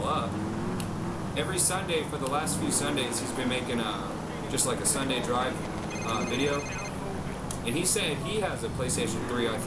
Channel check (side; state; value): both; identical; correlation 1.00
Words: up. Every Sunday for the last few Sundays, he's been making just like a Sunday drive video. And he said he has a PlayStation 3, I